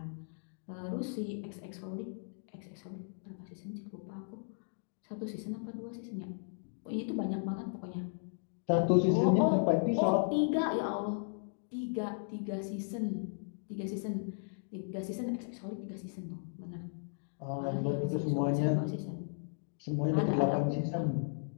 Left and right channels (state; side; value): silent; right; digital silence